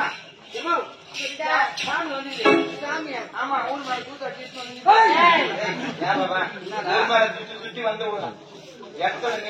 ஏமா சாமி வந்து சாமி ஆமா ஊர் மாதிரி கூத்த சுத்தி வந்து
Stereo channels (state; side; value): identical; both; correlation 1.00